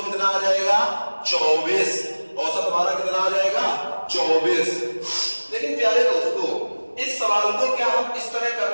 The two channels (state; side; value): inverted; both; correlation -1.00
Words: कितना आ जाएगा? 24। औसत हमारा कितना आ जाएगा? 24। लेकिन प्यारे दोस्तों इस सवाल को क्या हम इस तरह कर